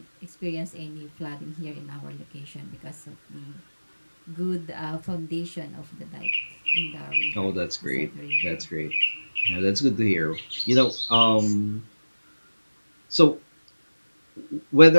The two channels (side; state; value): both; inverted; correlation -1.00